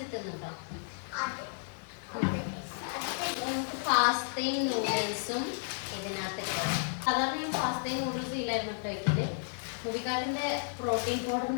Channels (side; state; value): right; silent; digital silence